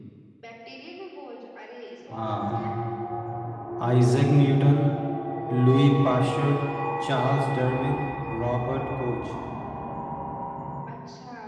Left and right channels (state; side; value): identical; both; correlation 1.00